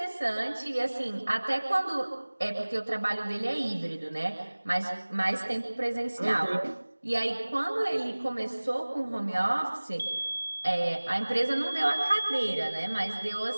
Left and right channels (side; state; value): both; inverted; correlation -1.00